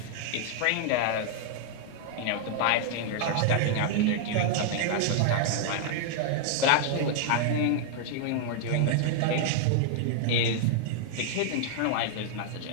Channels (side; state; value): both; different; correlation -0.01